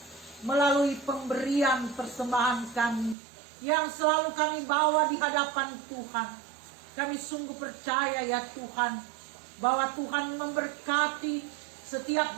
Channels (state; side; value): drops out; left; at 3.2 s